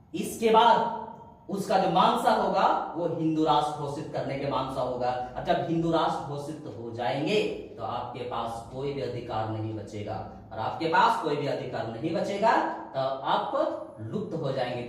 बाद उसका जो मानसा होगा वो हिंदू राष्ट्र घोषित करने के मानसा होगा। और जब हिंदू राष्ट्र घोषित हो जाएंगे तो आपके पास कोई भी अधिकार नहीं बचेगा, और आपके पास कोई भी अधिकार नहीं बचेगा तो आप लुप्त हो जाएंगे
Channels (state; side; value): identical; both; correlation 1.00